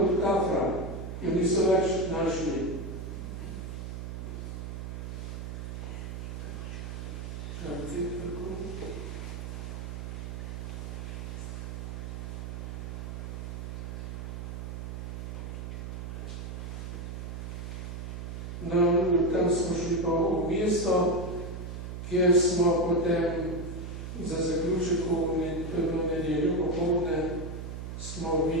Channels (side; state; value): right; noise; hum, 6 dB below the sound